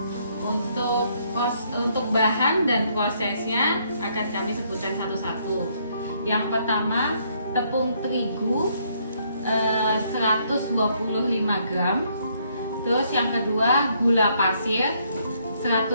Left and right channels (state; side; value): inverted; both; correlation -0.70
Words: untuk bahan dan prosesnya akan kami sebutkan satu-satu. Yang pertama, tepung terigu 125 gram. Terus yang kedua, gula pasir